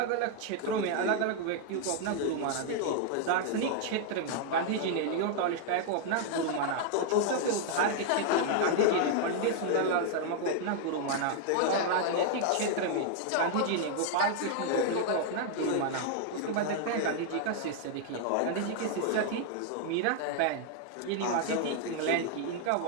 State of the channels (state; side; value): different; both; correlation 0.00